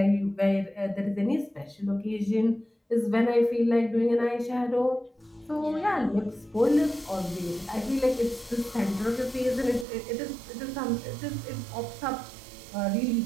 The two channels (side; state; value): left; drops out; at 9.9 s